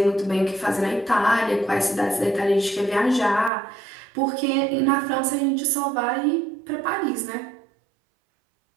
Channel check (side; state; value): left; drops out; at 3.5 s